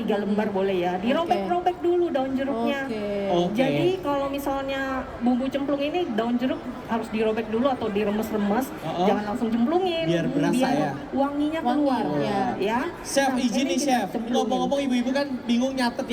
lembar boleh ya. Dirobek-robek dulu daun jeruknya. Oke. Jadi kalau misalnya bumbu cemplung ini daun jeruk harus dirobek dulu atau diremes-remes, jangan langsung cemplungin. Biar berasa ya. Wanginya Wangi, keluar. ya. Chef, Nah, izin ini nih kita Chef. cemplungin. Ngomong-ngomong ibu-ibu kan bingung nyatet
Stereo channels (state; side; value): identical; both; correlation 1.00